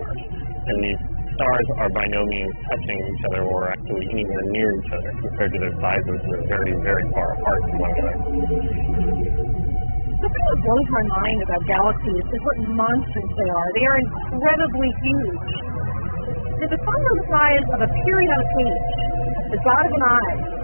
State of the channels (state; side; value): inverted; both; correlation -1.00